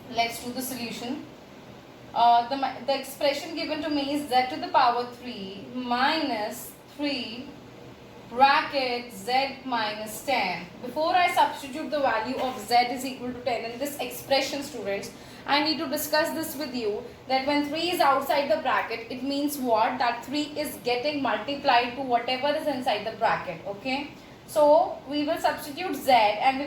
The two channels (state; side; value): identical; both; correlation 1.00